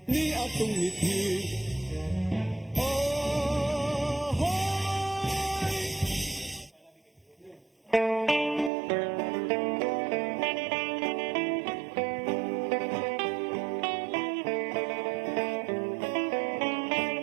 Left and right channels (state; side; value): drops out; left; at 8.7 s